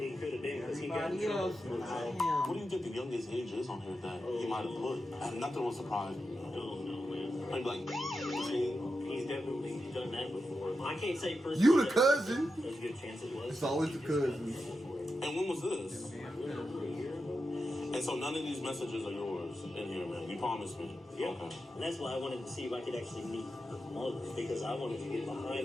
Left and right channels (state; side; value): normal; both; correlation 0.89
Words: could have been because he got in everybody trouble else, for not it. him. What do you think the youngest age is on here that he might have put? And nothing will surprise me. No, man. Maybe like 15. He's definitely done that before. I can't say personally. You the cousin. There's a good chance it was. It's always the cousins. And when was this? A year ago. And so none of these messages are yours in here, man. You promised me. Yeah. Okay. And that's why I wanted to see if I could actually meet her mother, because I wanted to get